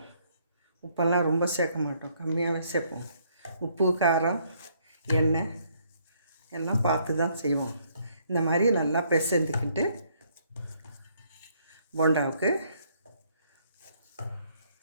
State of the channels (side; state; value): both; inverted; correlation -0.68